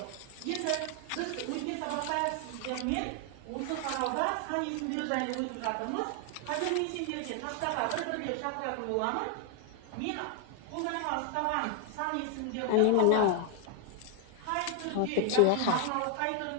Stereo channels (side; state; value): both; different; correlation 0.00